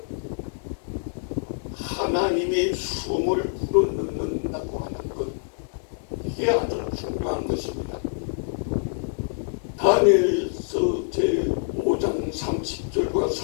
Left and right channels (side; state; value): right; silent; 61 dB below the other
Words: 하나님의 숨을 불어넣는다고 하는 것, 이게 아주 중요한 것입니다. 다니엘서 제5장 30절과